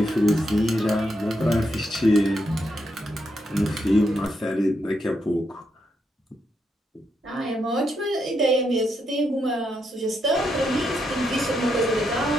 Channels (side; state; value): both; normal; correlation 0.80